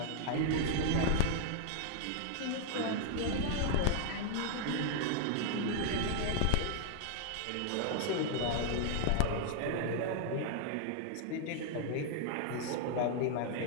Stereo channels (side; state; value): both; different; correlation 0.00